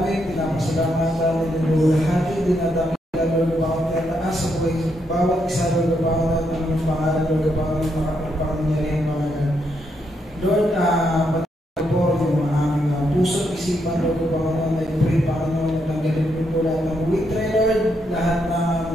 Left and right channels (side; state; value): both; normal; correlation 0.78